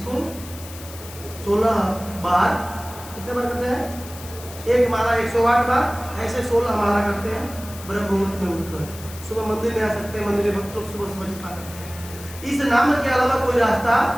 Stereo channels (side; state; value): left; noise; hiss, 15 dB below the sound